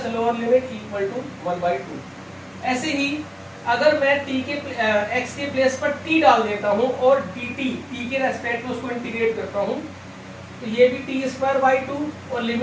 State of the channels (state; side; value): identical; both; correlation 1.00